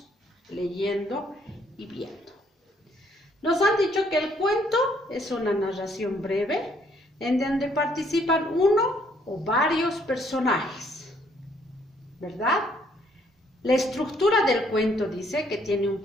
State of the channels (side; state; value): both; normal; correlation 0.67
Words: leyendo y viendo. Nos han dicho que el cuento es una narración breve en donde participan uno o varios personajes, ¿verdad? La estructura del cuento dice que tiene un